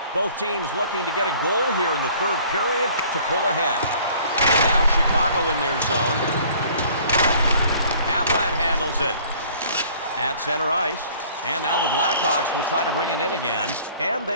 Both teams looking to get a goal here in the third period to pull ahead. And now Chicago in their zone. Havlat handles it at center ice. And now the Blackhawks will try to bring it in again. And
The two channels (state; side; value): inverted; both; correlation -0.53